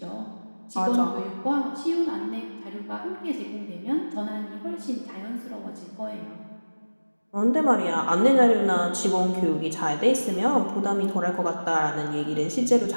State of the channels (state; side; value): inverted; both; correlation -1.00